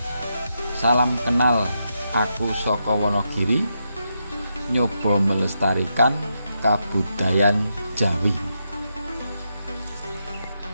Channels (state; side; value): inverted; both; correlation -0.84